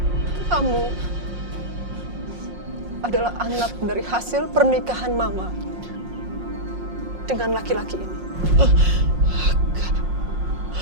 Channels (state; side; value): late; left; 5.6 ms